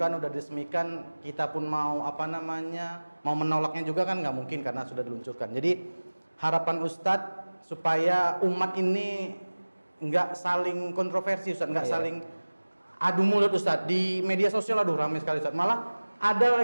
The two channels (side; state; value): both; inverted; correlation -1.00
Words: udah diresmikan. Kita pun mau mau menolaknya juga kan nggak mungkin karena sudah diluncurkan. Jadi harapan Ustaz supaya umat ini nggak saling kontroversi Ustaz, nggak saling adu mulut Ustaz. Di media sosial aduh ramai sekali Ustaz. Malah ada